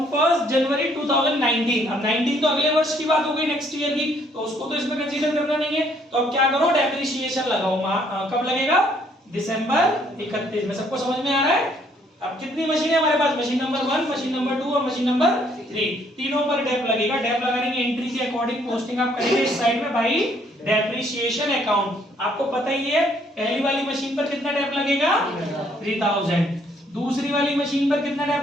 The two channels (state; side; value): normal; both; correlation 0.66